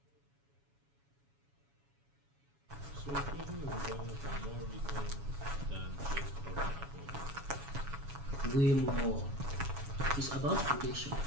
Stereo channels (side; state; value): left; late; 7.1 ms